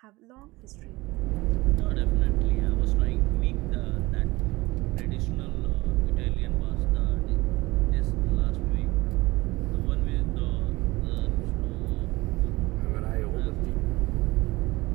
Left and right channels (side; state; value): left; quieter; 21.1 dB